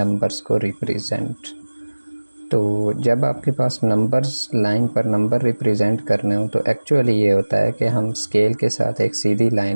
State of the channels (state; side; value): inverted; both; correlation -1.00